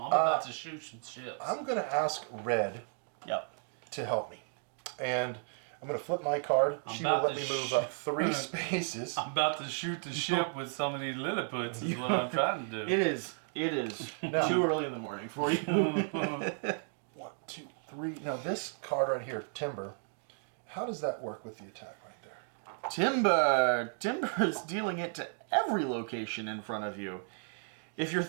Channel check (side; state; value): left; silent; 55 dB below the other